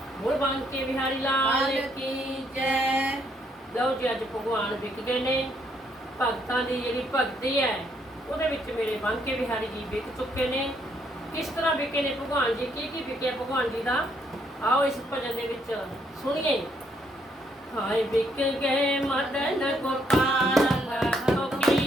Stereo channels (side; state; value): both; normal; correlation 0.72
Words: बोल बांके बिहारी लाल की जय। ਲਓ ਜੀ ਅੱਜ ਭਗਵਾਨ ਵਿਕ ਗਏ ਨੇ। ਭਗਤਾਂ ਦੀ ਜਿਹੜੀ ਭਗਤੀ ਹੈ ਉਹਦੇ ਵਿੱਚ ਮੇਰੇ ਬਾਂਕੇ ਬਿਹਾਰੀ ਜੀ ਵਿਕ ਚੁੱਕੇ ਨੇ। ਕਿਸ ਤਰ੍ਹਾਂ ਵਿਕੇ ਨੇ ਭਗਵਾਨ ਜੀ, ਕੀ ਵਿਕਿਆ ਭਗਵਾਨ ਜੀ ਦਾ, ਆਓ ਇਸ ਭਜਨ ਦੇ ਵਿੱਚ ਸੁਣੀਏ। ਹਾਏ ਵਿਕ ਗਏ ਮਦਨ ਗੋਪਾਲ,